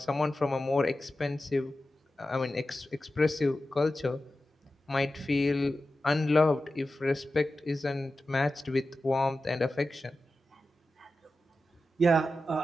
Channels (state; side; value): normal; both; correlation 0.93